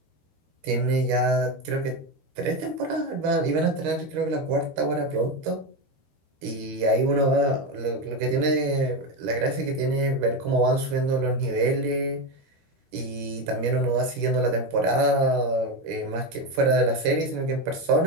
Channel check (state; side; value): late; left; 13 ms